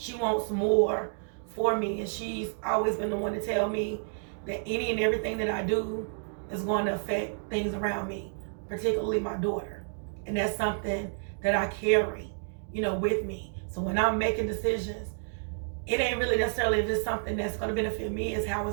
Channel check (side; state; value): left; silent; digital silence